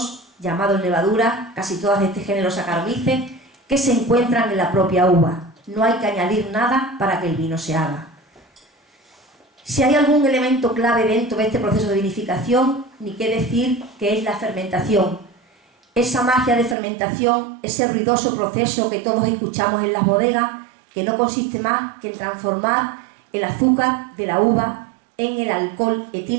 llamados levadura, casi todas de este género Saccharomyces, que se encuentran en la propia uva. No hay que añadir nada para que el vino se haga. Si hay algún elemento clave dentro de este proceso de vinificación, ni qué decir que es la fermentación. Esa magia de fermentación, ese ruidoso proceso que todos escuchamos en las bodegas, que no consiste más que en transformar el azúcar de la uva en el alcohol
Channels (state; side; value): drops out; left; at 16.8 s